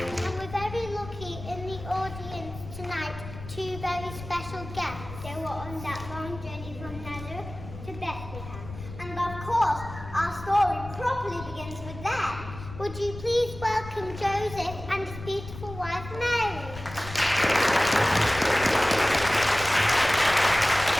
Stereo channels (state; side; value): noise; left; rumble, 13 dB below the sound